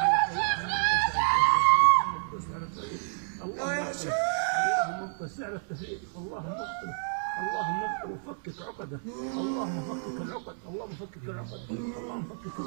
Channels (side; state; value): left; silent; 58 dB below the other